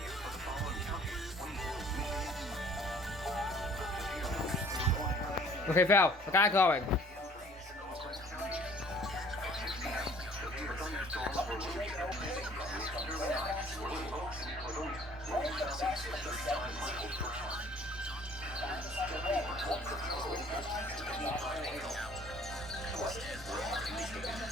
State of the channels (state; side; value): normal; both; correlation 0.55